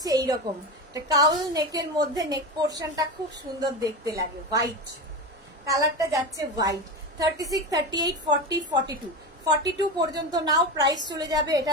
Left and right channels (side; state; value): both; normal; correlation 0.21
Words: এইরকম কাউল নেকের মধ্যে, নেক পোর্শনটা খুব সুন্দর দেখতে লাগে, হোয়াইট কালারটা যাচ্ছে, হোয়াইট। 36, 38, 40, 42, 42 পর্যন্ত নাও। প্রাইস চলে যাবে